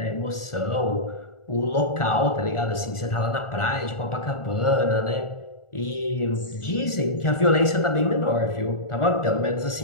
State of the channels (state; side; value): late; right; 1.4 ms